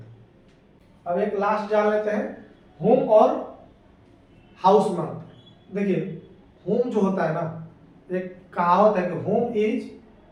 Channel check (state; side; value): identical; both; correlation 1.00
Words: है। अब एक लास्ट जान लेते हैं, होम और हाउस में। देखिए होम जो होता है ना, एक कहावत है कि home is